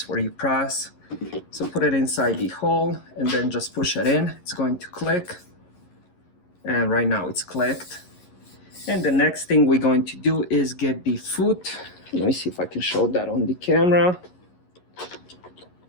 where you press. So put it inside the hole and then just push it in. It's going to click, and right now it's clicked. And the next thing we're going to do is get the foot. Let me see if I can show that on the camera.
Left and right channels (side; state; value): right; late; 11 ms